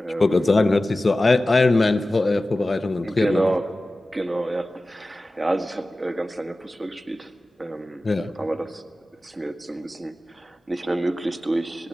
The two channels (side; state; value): both; normal; correlation 0.95